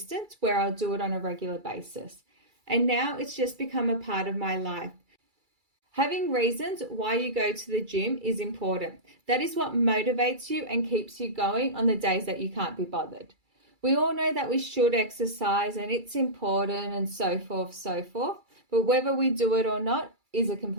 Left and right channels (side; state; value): left; late; 2.3 ms